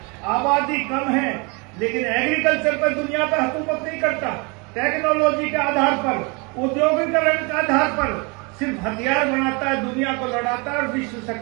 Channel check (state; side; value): quieter; left; 30.3 dB